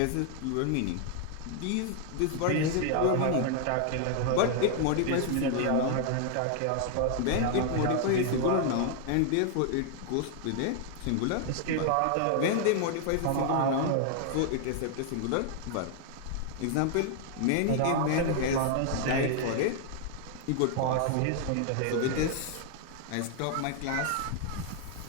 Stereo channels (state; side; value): different; both; correlation 0.00